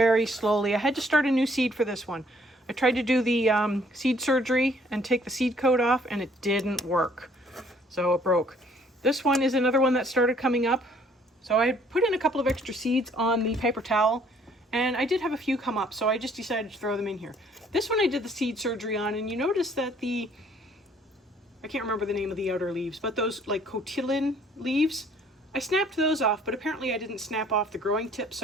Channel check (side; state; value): both; normal; correlation 0.61